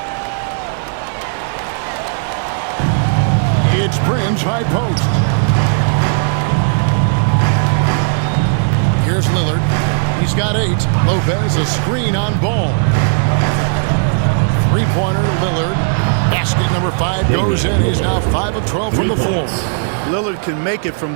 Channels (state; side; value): silent; left; 63 dB below the other